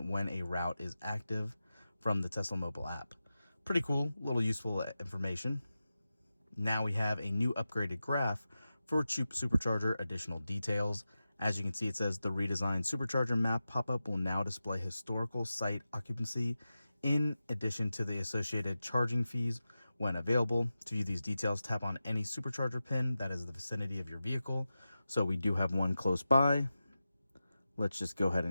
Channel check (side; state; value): both; inverted; correlation -0.93